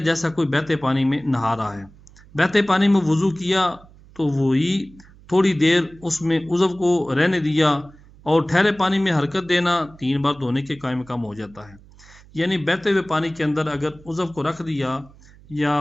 جیسا کوئی بہتے پانی میں نہا رہا ہے۔ بہتے پانی میں وضو کیا تو وہی تھوڑی دیر اس میں عضو کو رہنے دیا، اور ٹھہرے پانی میں حرکت دینا 3 بار دھونے کے قائم مقام ہو جاتا ہے۔ یعنی بہتے ہوئے پانی کے اندر اگر عضو کو رکھ دیا یا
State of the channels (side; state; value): right; noise; hum, 24 dB below the sound